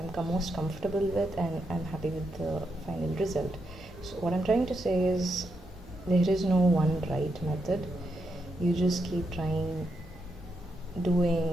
most comfortable with, and I'm happy with the final result. So what I'm trying to say is there is no one right method. You just keep trying,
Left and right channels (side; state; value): both; normal; correlation 0.82